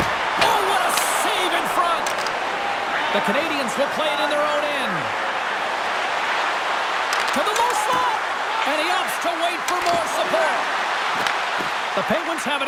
Oh, what a save in front. The Canadians will play it in their own end. To the low slot. And he opts to wait for more support. The Penguins have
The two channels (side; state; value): both; identical; correlation 1.00